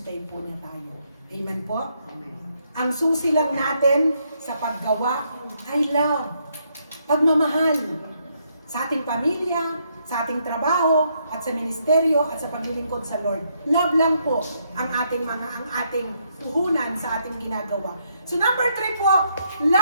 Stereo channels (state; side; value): inverted; both; correlation -0.75